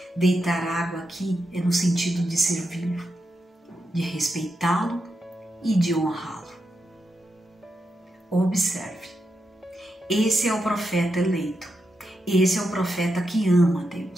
Deitar água aqui é no sentido de servi-lo, de respeitá-lo e de honrá-lo. Observe, esse é o profeta eleito, esse é o profeta que ama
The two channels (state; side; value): normal; both; correlation 0.86